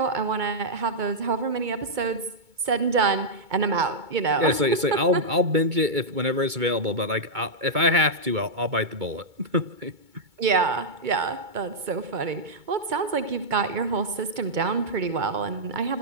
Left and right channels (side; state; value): left; late; 2.2 ms